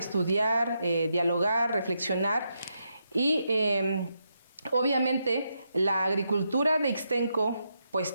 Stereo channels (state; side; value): inverted; both; correlation -0.82